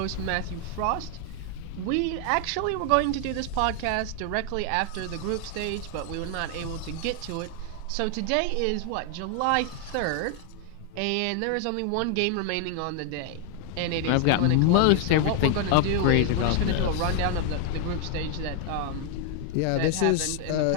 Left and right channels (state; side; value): different; both; correlation 0.00